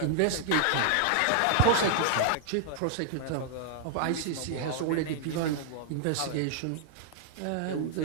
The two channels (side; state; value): both; different; correlation 0.00